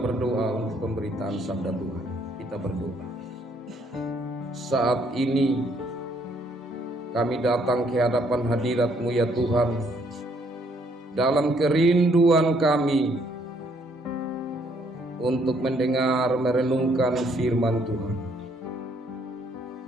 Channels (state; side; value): normal; both; correlation 0.68